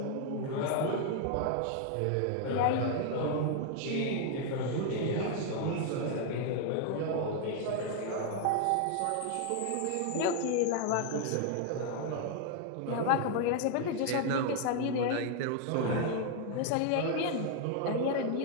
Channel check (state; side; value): different; both; correlation 0.00